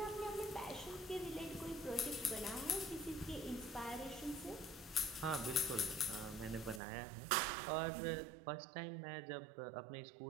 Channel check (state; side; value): drops out; left; at 6.8 s